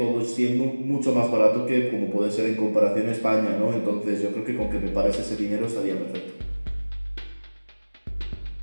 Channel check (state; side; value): inverted; both; correlation -1.00